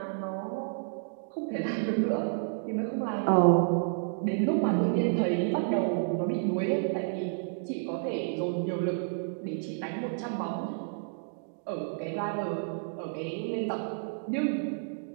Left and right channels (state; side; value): silent; left; digital silence